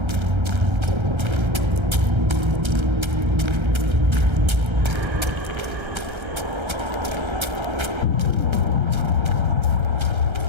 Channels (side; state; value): left; late; 1.3 ms